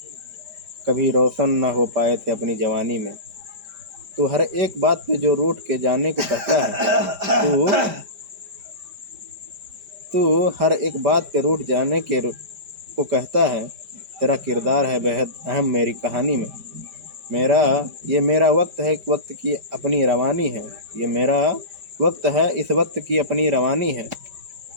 कभी रोशन न हो पाए थे अपनी जवानी में। तू हर एक बात पे जो रूठ के जाने को कहता है, तू हर एक बात पे रूठ जाने के को कहता है। तेरा किरदार है बेहद अहम मेरी कहानी में। मेरा वक्त है, वक्त की अपनी रवानी है। ये मेरा वक्त है, इस वक्त की अपनी रवानी है।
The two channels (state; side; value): late; left; 5.0 ms